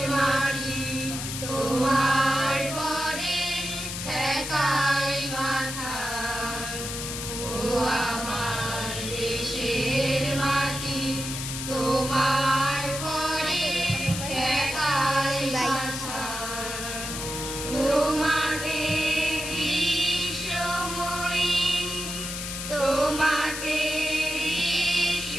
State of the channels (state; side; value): noise; left; hiss, 6 dB below the sound